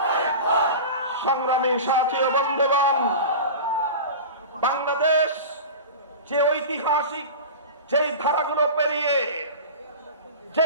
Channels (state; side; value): inverted; both; correlation -0.31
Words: সংগ্রামী সাথী ও বন্ধুগণ, বাংলাদেশ যে ঐতিহাসিক যেই ধারাগুলো পেরিয়ে